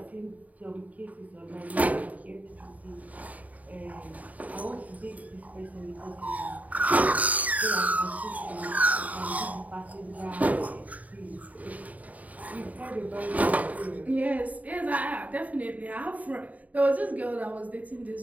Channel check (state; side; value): late; left; 0.073 ms